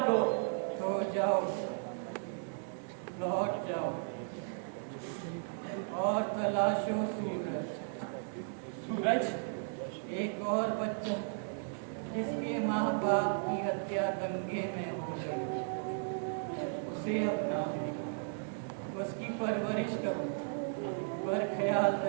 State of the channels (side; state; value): left; silent; digital silence